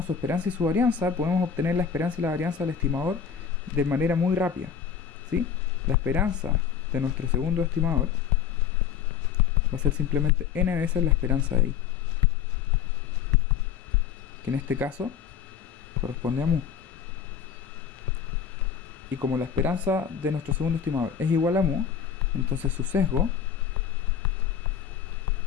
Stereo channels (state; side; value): quieter; right; 7.8 dB